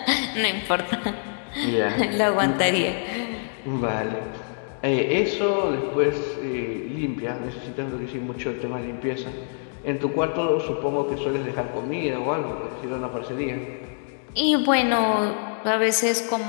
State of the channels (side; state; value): right; silent; digital silence